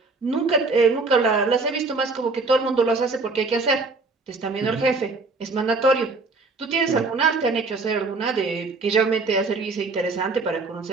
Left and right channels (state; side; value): quieter; left; 3.8 dB